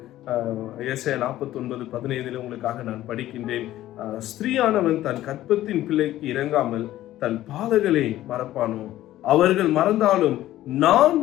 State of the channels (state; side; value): quieter; right; 14.3 dB